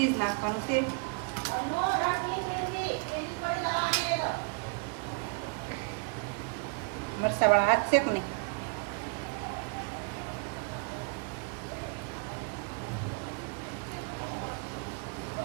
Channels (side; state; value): left; quieter; 34.3 dB